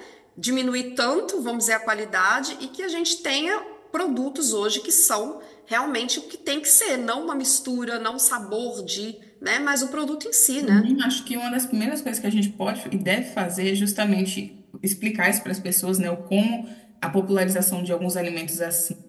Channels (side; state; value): both; identical; correlation 1.00